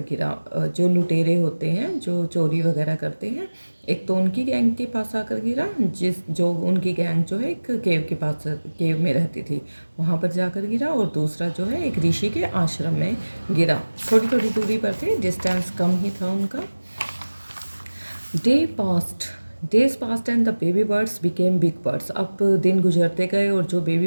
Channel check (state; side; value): inverted; both; correlation -1.00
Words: गिरा। जो लुटेरे होते हैं जो चोरी वगैरह करते हैं, एक तो उनकी गैंग के पास आकर गिरा, जो उनकी गैंग जो है एक केव के पास, केव में रहती थी, वहाँ पर जाकर गिरा। और दूसरा जो है एक ऋषि के आश्रम में गिरा। थोड़ी थोड़ी दूरी पर थे, डिस्टेंस कम ही था उनका। Day past days past and the baby birds became big birds. अब दिन गुजरते गए और जो